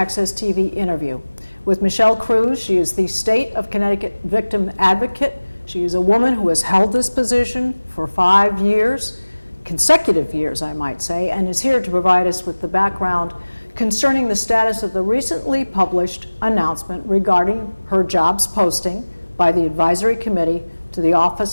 TV interview with Michelle Cruz. She is the State of Connecticut Victim Advocate. She is a woman who has held this position for 5 years, consecutive years, I might say, and is here to provide us with the background concerning the status of the recently published announcement regarding her jobs posting by the Advisory Committee to the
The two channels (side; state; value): both; inverted; correlation -1.00